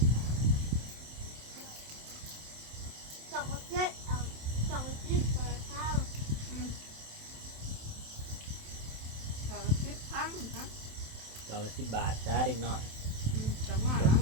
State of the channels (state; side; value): late; left; 27 ms